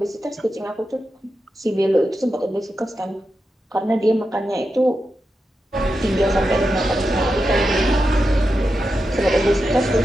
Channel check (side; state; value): both; normal; correlation 0.89